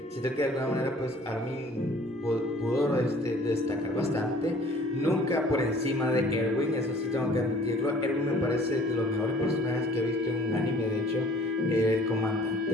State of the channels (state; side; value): normal; both; correlation 0.53